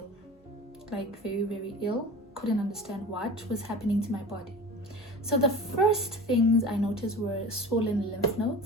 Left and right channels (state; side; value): normal; both; correlation 0.35